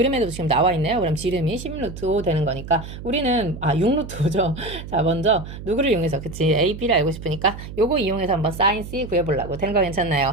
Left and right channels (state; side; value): noise; right; hum, 11 dB below the sound